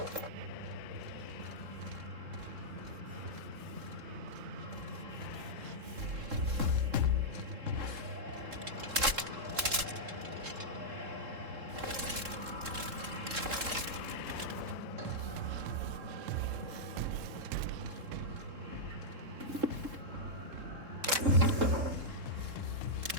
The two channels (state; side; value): late; left; 3.7 ms